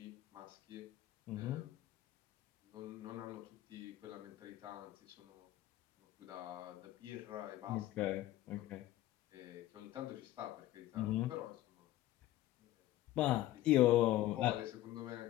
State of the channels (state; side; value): quieter; right; 14.9 dB